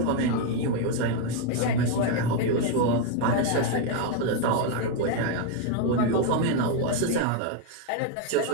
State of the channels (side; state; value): both; different; correlation 0.01